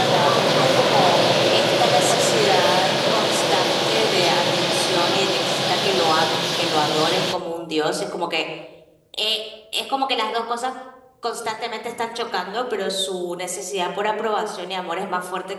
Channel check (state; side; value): identical; both; correlation 1.00